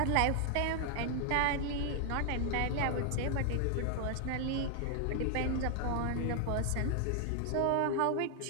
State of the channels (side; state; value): both; different; correlation 0.00